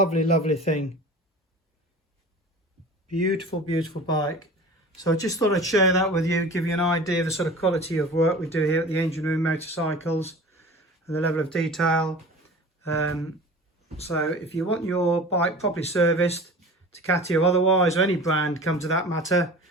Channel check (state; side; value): normal; both; correlation 0.39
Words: thing. Beautiful bike. So I just thought I'd share that with you, give you an idea of the sort of quality of work we do here at the Engine Room Motorcycles and the level of detail. So if you want your bike properly serviced, Ducati or otherwise, or any brand, come to that matter,